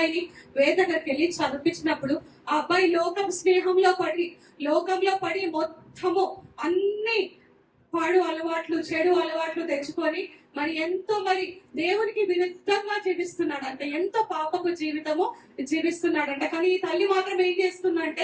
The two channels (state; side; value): identical; both; correlation 1.00